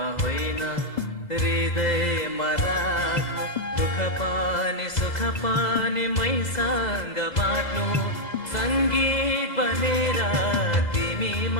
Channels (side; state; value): right; late; 2.1 ms